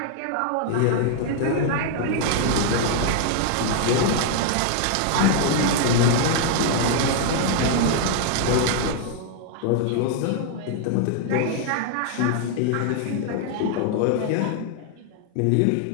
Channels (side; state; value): both; different; correlation 0.00